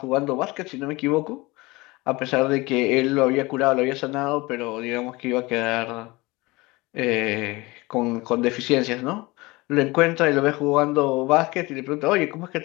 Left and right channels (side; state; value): right; quieter; 22.6 dB